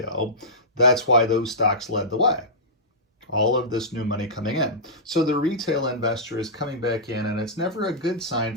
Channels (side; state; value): both; normal; correlation -0.16